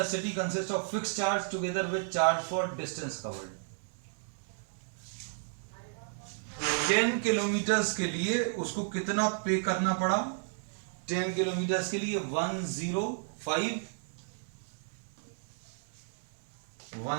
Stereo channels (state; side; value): silent; left; digital silence